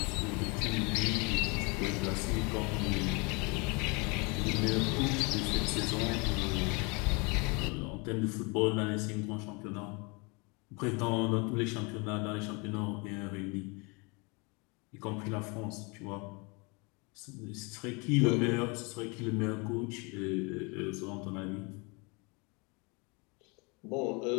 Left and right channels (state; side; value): quieter; right; 29.9 dB